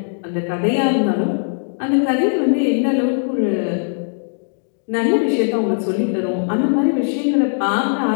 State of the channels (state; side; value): silent; right; digital silence